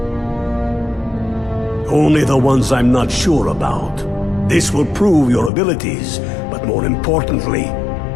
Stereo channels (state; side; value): drops out; right; at 5.5 s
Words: Only the ones I'm not sure about. This will prove your abilities, but more importantly,